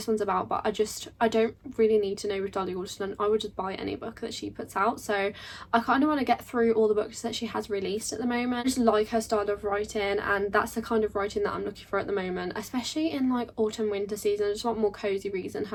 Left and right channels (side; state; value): both; identical; correlation 1.00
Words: one's about, but I don't really need to know with Dolly Alderton. I would just buy any book that she puts out, so I kind of want to get through all the books that she has released at the moment. I just like her style of writing, and that's the kind of writing that I'm looking for at the moment, especially in like autumn winter season. I just want more cozy reads, and